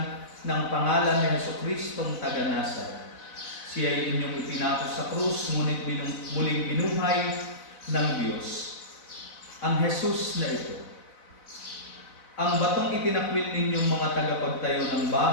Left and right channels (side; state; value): right; late; 4.0 ms